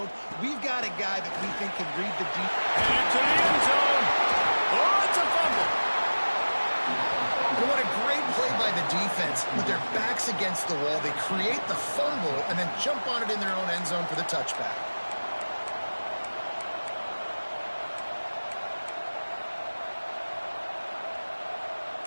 We've got a guy that we think can read the deep. Headed to the end zone. Oh, it's a fumble. And what a great play by the defense. With their backs against the wall, they create the fumble and then jump on it in their own end zone for the touchback.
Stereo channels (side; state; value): both; inverted; correlation -1.00